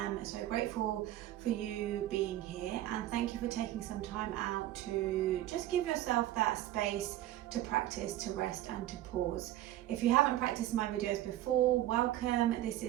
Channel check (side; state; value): left; quieter; 14.1 dB